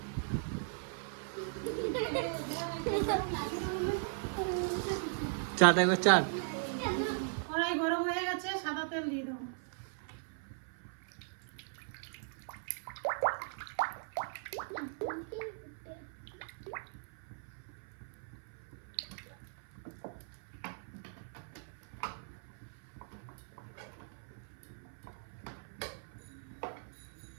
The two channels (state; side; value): silent; left; 52 dB below the other